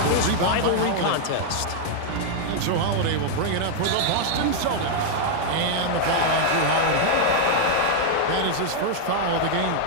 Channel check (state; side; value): different; both; correlation -0.01